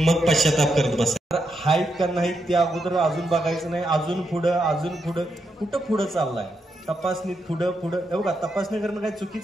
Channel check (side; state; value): both; normal; correlation 0.82